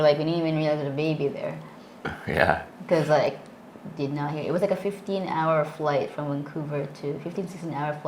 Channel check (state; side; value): identical; both; correlation 1.00